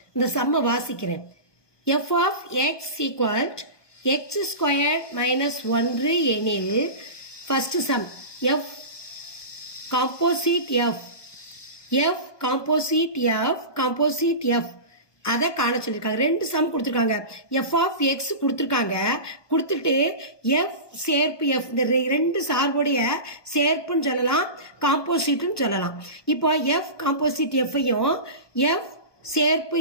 இந்த சம்மை வாசிக்கிறேன். f of x equal x squared minus 1 எனில் first sum f composite f composite f அதை காண சொல்லியிருக்காங்க. 2 சம் கொடுத்துருக்காங்க. எஃப் ஆஃப் எக்ஸ் கொடுத்துருக்காங்க. கொடுத்துட்டு எஃப் சேர்ப்பு எஃப், இந்த 2 சார்புடைய சேர்ப்புன்னு சொல்லலாம், காம்போசிட்னு சொல்லலாம். இப்போ எஃப் காம்போசிட் எஃப்ஐயும் எஃப் சேர்ப்பு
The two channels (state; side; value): late; right; 1.2 ms